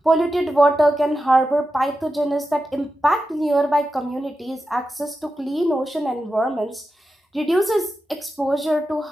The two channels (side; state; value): both; normal; correlation 0.90